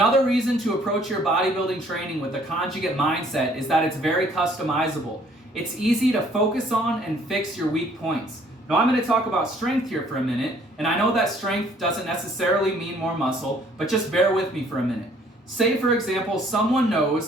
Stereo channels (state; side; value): normal; both; correlation 0.60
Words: reason to approach your bodybuilding training with a conjugate mindset is that it's very customizable. It's easy to focus on and fix your weak points. Now I'm going to talk about strength here for a minute, and I know that strength doesn't necessarily mean more muscle, but just bear with me for a minute. Say, for example, someone